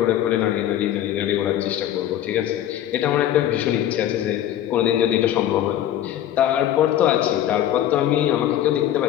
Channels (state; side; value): quieter; right; 11.7 dB